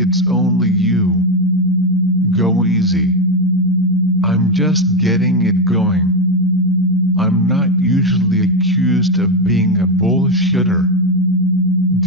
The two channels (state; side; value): normal; both; correlation 0.09